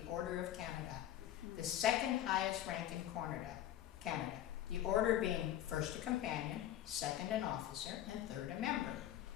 Order of Canada, the second highest rank in Canada, the order being first a companion, second an officer, and third a member.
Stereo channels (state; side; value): quieter; right; 12.3 dB